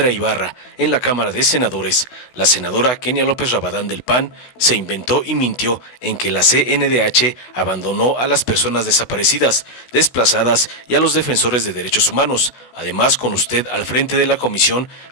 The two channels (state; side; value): late; right; 16 ms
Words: Ibarra en la Cámara de Senadores, la senadora Kenia López Rabadán del PAN se inventó y mintió en que la CNDH abandonó a las personas desaparecidas, desplazadas y a los defensores de derechos humanos. Además, con usted al frente de la comisión,